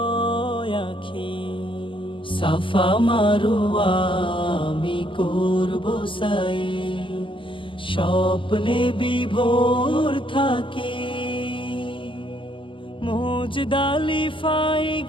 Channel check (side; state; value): right; late; 0.25 ms